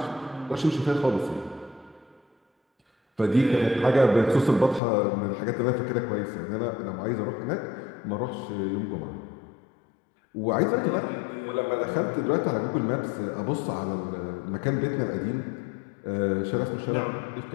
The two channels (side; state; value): right; drops out; at 4.8 s